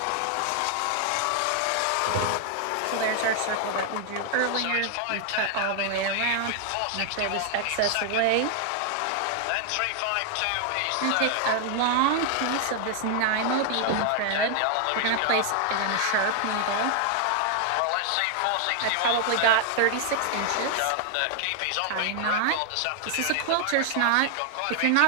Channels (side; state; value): both; different; correlation 0.00